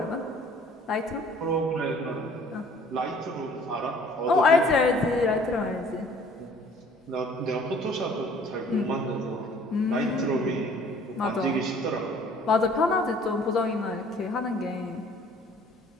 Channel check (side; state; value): both; normal; correlation 0.54